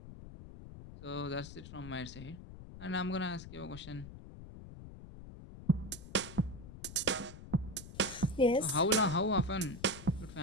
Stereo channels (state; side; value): noise; left; rumble, 14 dB below the sound